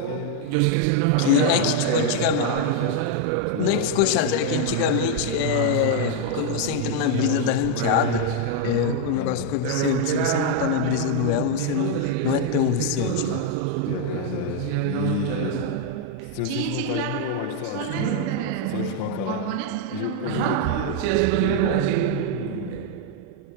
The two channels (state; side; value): different; both; correlation 0.00